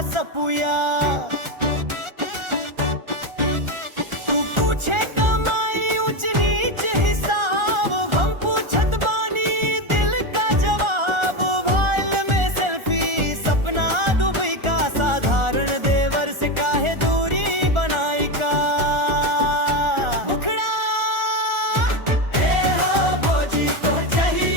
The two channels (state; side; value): late; left; 1.4 ms